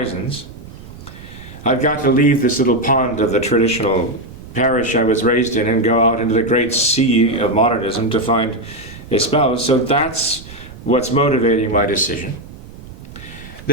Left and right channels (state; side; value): noise; right; rumble, 16 dB below the sound